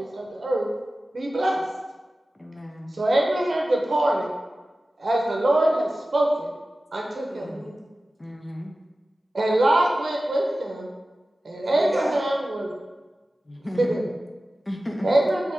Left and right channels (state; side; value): normal; both; correlation 0.95